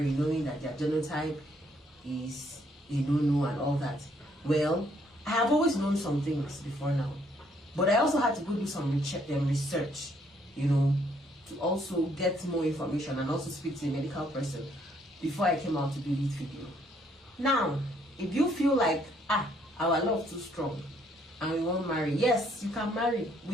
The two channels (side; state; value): both; normal; correlation 0.68